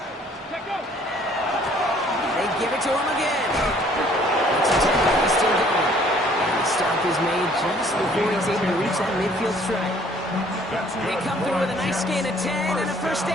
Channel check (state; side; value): normal; both; correlation 0.58